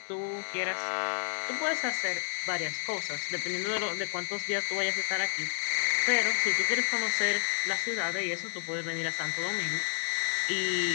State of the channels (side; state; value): right; silent; digital silence